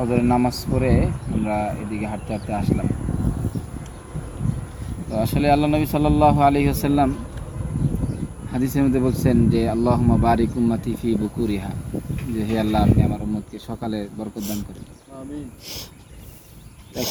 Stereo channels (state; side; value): identical; both; correlation 1.00